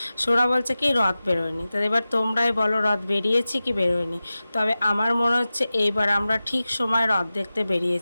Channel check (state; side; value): inverted; both; correlation -0.95